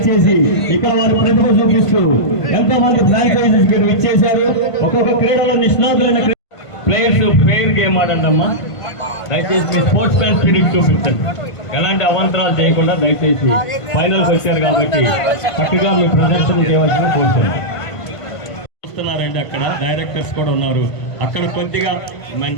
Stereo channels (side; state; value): right; late; 1.5 ms